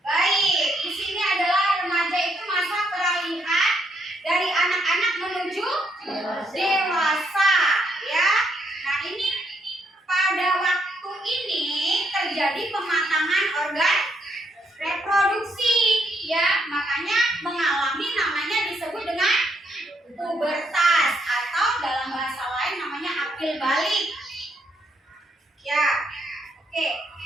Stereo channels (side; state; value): both; normal; correlation 0.74